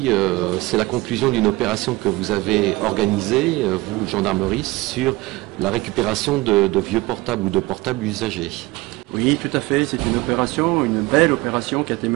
c'est la conclusion d'une opération que vous avez organisée, vous, gendarmerie, sur la récupération de vieux portables ou de portables usagés. Oui, tout à fait, c'est une belle opération qui a été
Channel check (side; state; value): left; quieter; 21.3 dB